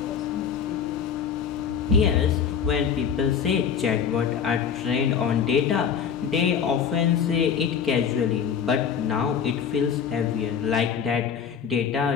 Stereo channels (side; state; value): right; quieter; 7.4 dB